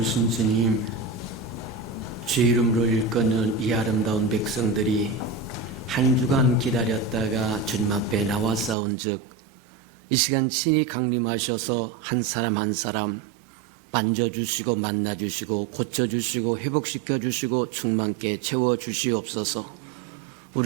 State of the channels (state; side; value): drops out; left; at 8.8 s